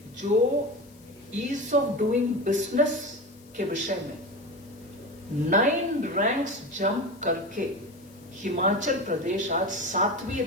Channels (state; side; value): noise; left; hiss, 27 dB below the sound